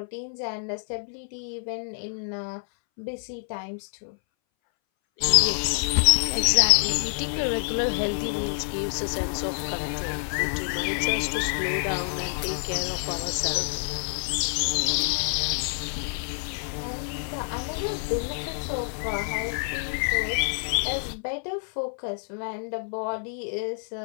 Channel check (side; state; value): right; silent; 60 dB below the other